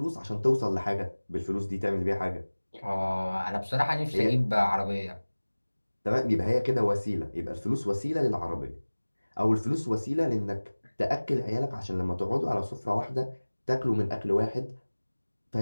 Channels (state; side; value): inverted; both; correlation -1.00